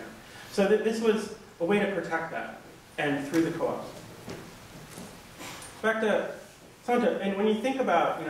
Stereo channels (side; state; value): both; identical; correlation 1.00